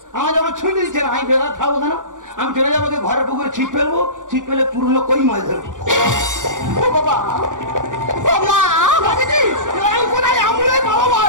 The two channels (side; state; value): left; late; 0.87 ms